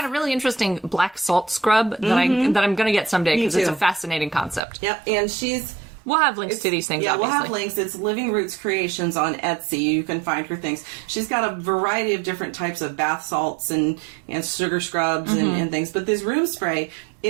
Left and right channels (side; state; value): left; drops out; at 4.6 s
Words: a really interesting black salt scrub that I'm going to get someday because it's a fascinating concept. Yep, and we'll have links to these things, obviously. We'll have links. It's Living Roots Creations on Etsy. You can find her things. She's got a variety of different types of bath salts and sugar scrubs and things. But this room spray,